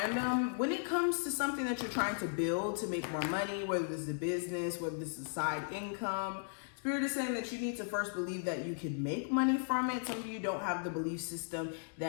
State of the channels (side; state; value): right; silent; digital silence